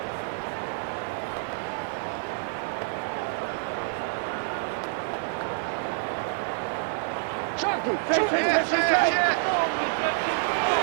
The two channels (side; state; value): left; silent; digital silence